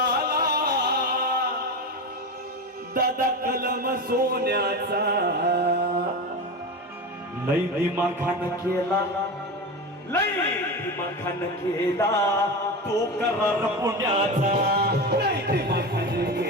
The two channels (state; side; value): normal; both; correlation 0.23